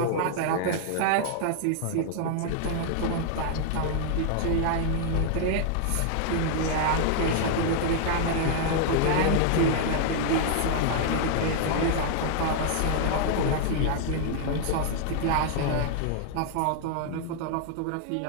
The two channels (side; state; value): both; different; correlation 0.00